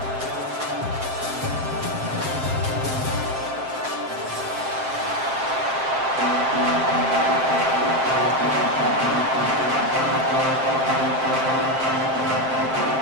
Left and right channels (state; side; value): late; left; 7.6 ms